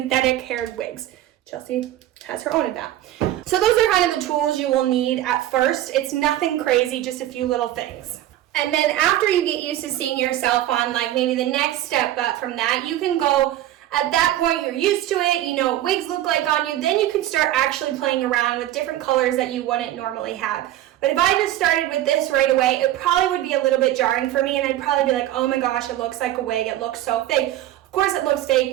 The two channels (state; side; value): quieter; left; 13.6 dB